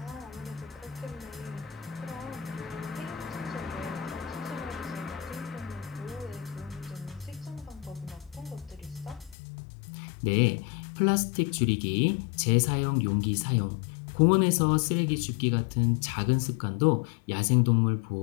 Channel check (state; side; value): drops out; right; at 9.3 s